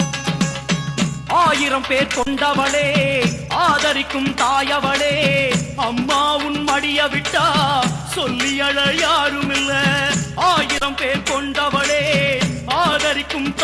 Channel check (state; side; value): identical; both; correlation 1.00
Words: ஆயிரம் பேர் கொண்டவளே, ஆதரிக்கும் தாயவளே, அம்மா உன் மடிய விட்டா சொல்லி அழ யாரும் இல்ல. ஆயிரம் பேர் கொண்டவளே, ஆதரிக்கும்